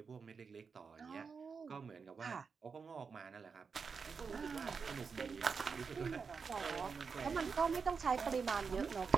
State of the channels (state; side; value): quieter; left; 5.5 dB